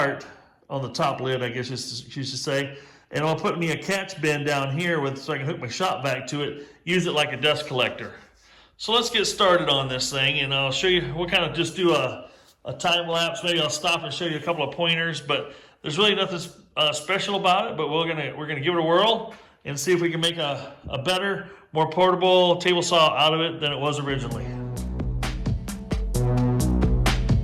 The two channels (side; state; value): both; identical; correlation 1.00